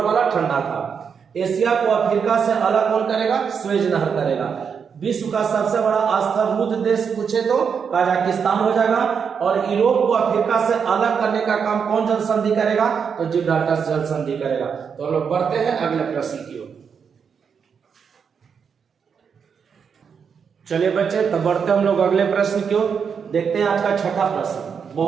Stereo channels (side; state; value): left; quieter; 6.6 dB